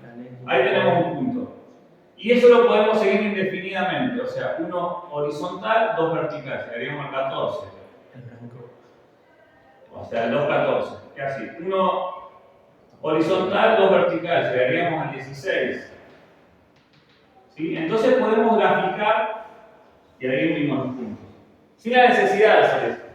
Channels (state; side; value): identical; both; correlation 1.00